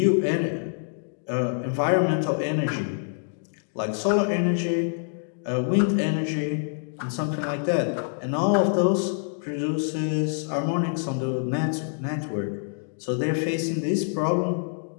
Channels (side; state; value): right; silent; digital silence